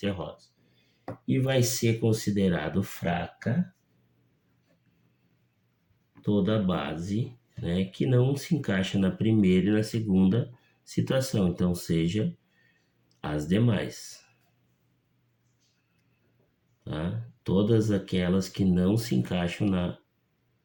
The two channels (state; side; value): identical; both; correlation 1.00